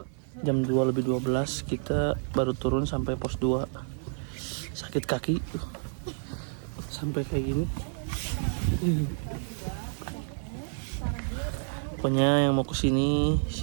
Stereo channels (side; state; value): left; silent; 58 dB below the other